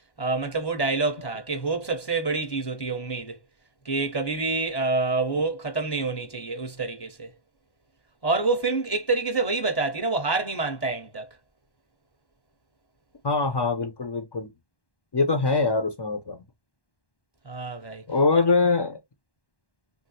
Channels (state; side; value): late; right; 1.1 ms